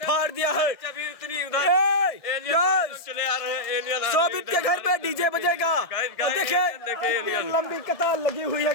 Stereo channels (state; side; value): late; right; 1.6 ms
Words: दिया है। चले आ रहे हैं एलियन। शोभित के घर पे डीजे बजेगा। देखिए लंबी कतार लगी हुई है